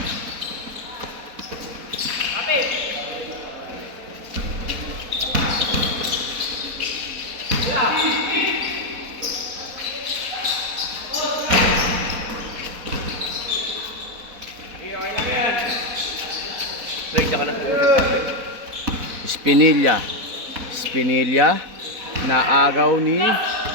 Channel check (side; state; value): left; late; 4.1 ms